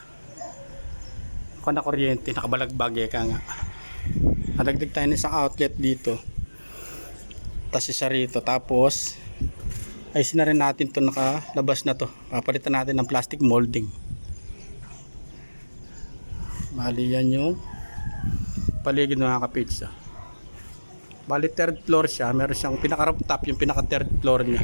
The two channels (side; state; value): both; inverted; correlation -1.00